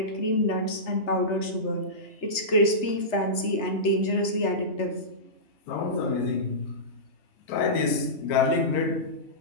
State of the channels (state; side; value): late; right; 3.3 ms